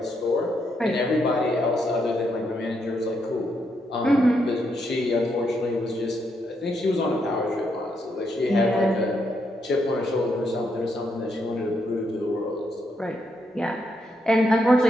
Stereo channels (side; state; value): both; normal; correlation 0.78